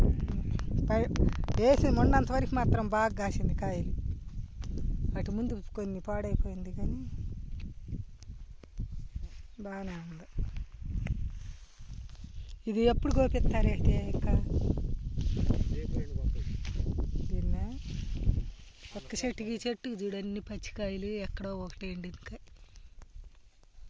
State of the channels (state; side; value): identical; both; correlation 1.00